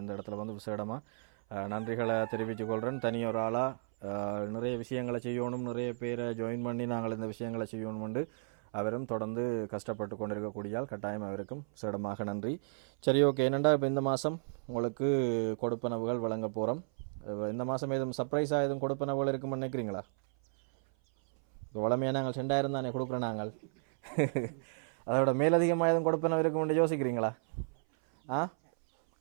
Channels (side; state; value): left; silent; 55 dB below the other